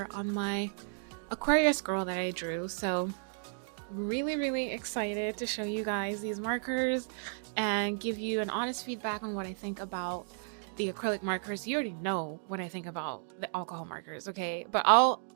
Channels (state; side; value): silent; left; digital silence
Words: on my Aquarius girl that I drew. So really excited to show you guys these markers and give you an honest feedback on what I think about the acrylic markers. You already know what I think about the alcohol markers, okay? But